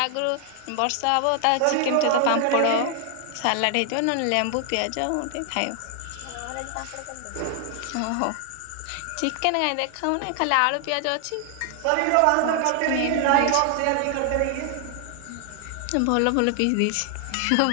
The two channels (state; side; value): different; both; correlation 0.00